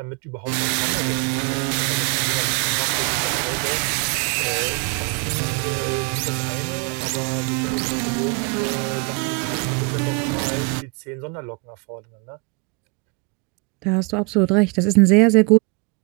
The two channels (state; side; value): quieter; left; 31.7 dB